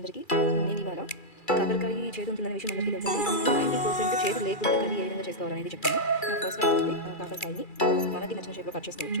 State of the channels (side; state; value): right; late; 2.3 ms